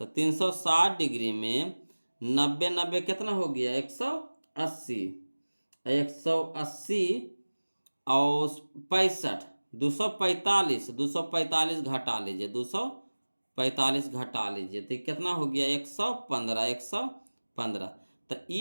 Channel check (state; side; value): inverted; both; correlation -1.00